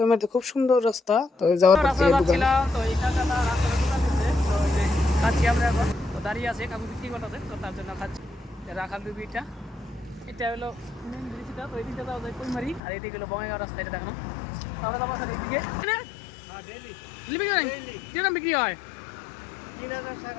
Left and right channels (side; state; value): right; drops out; at 12.8 s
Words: খুব সুন্দর রাস্তা, তো যাওয়ার পর থেকে দোকান তো এই কাকাটা রাস্তাটা দোকান দিচ্ছে, তো এই যে খাচ্ছি আমরা এখন। তো দাঁড়িয়ে আছে, কাকু বিক্রি করতেছে, তো তার জন্য খাচ্ছি। রাখাল বিবিটা এটা হলো মেন ব্রিজটা, তো এই দিকটা যাওয়া যায় কইমারি, আর এইদিকে হলো বঙ্গাইগাঁও রাস্তা, এটা দেখানো। তো আমরা যাবো এখন এইদিকে বিক্রি হয়।